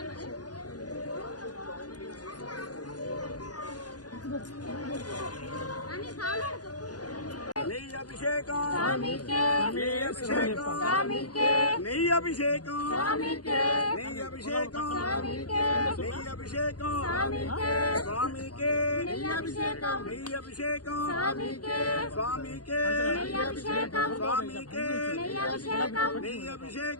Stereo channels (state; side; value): late; right; 0.69 ms